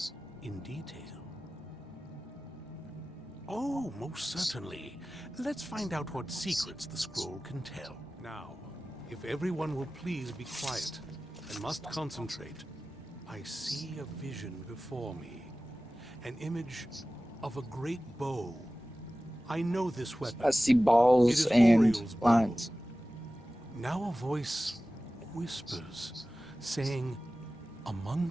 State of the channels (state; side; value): normal; both; correlation 0.96